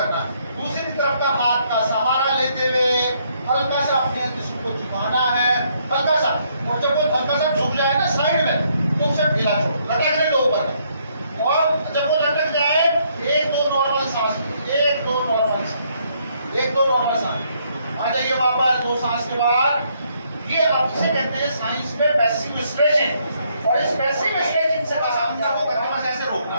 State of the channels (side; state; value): both; inverted; correlation -0.71